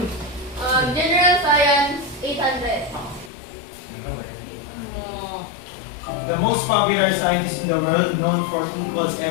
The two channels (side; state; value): right; drops out; at 3.3 s